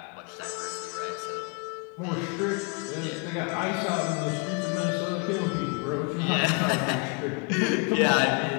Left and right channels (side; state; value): right; quieter; 31.4 dB